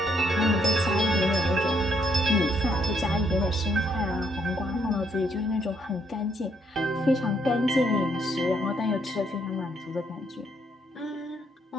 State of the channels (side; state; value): both; normal; correlation 0.72